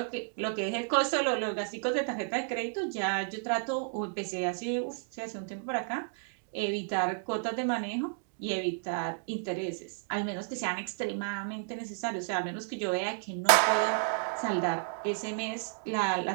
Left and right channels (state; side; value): silent; left; digital silence